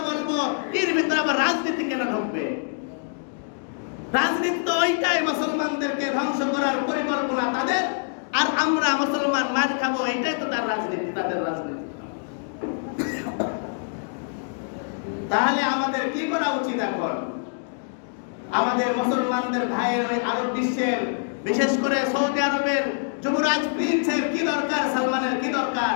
বলবো, এর ভিতরে আবার রাজনীতি কেন ঢুকবে? রাজনীতি তো ওইটাই মুসলমানদেরকে ধ্বংস করার পরিকল্পনা তাদের, আর আমরা মুসলমান মার খাবো, এইটাই তো তার রাজনীতি, তাদের রাজনীতি। তাহলে আমাদের কি করা উচিত এখন? আমাদের মুসলমানদের ভাইয়ের ওই আরব বিশ্বের, বিশেষ করে সৌদি আরবের যুবরাজ প্রিন্সের কি দরকার, সালমানের কি দরকার,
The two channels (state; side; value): silent; right; digital silence